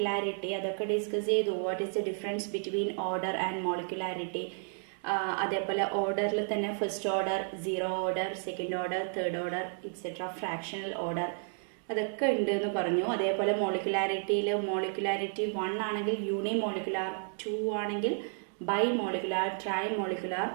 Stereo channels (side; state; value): left; silent; 56 dB below the other